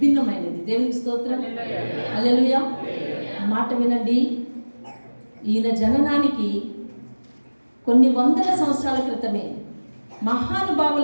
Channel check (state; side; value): inverted; both; correlation -1.00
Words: దేవునికి స్తోత్రం. హల్లెలూయా. మాట వినండి. ఈయన జననానికి కొన్ని వందల సంవత్సరాల క్రితమే